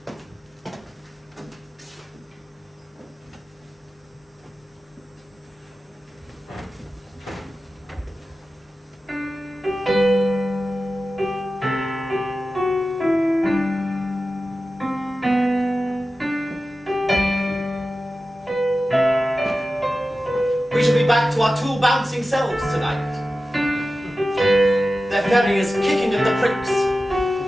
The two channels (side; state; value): both; normal; correlation 0.94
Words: We shall be back to our two bouncing selves tonight. Their ferry is kicking at the pricks.